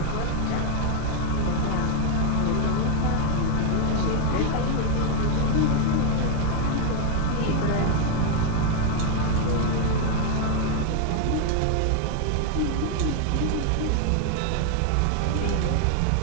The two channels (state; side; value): different; both; correlation 0.01